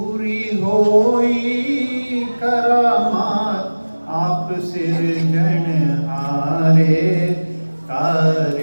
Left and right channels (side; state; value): both; inverted; correlation -1.00